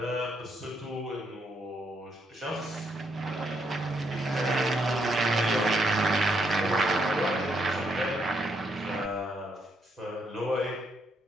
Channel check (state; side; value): normal; both; correlation 0.76